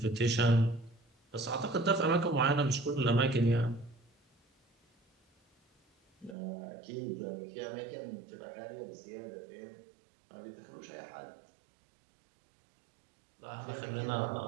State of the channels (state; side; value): drops out; left; at 6.4 s